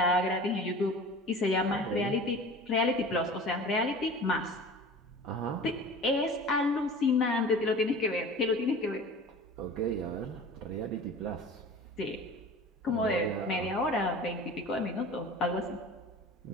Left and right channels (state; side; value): normal; both; correlation 0.39